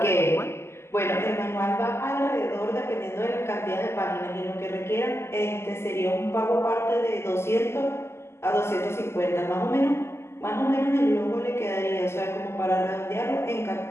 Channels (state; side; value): late; right; 0.12 ms